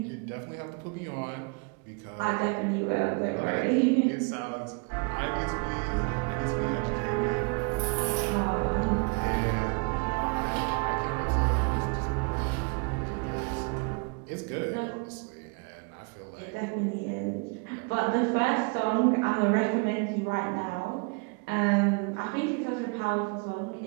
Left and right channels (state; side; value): quieter; left; 34.0 dB